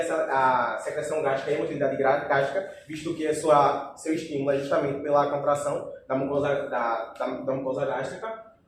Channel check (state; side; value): identical; both; correlation 1.00